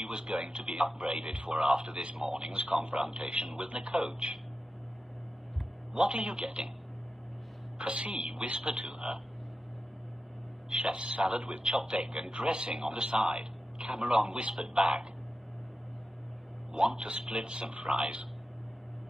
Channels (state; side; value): normal; both; correlation 0.91